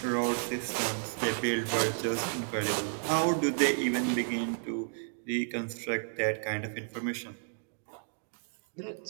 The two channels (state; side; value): silent; left; digital silence